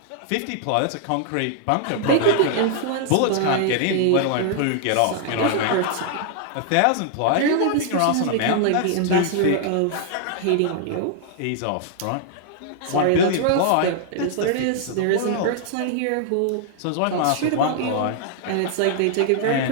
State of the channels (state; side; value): different; both; correlation -0.01